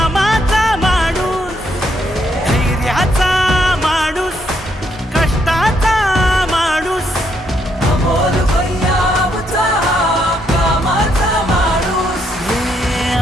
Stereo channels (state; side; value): normal; both; correlation 0.74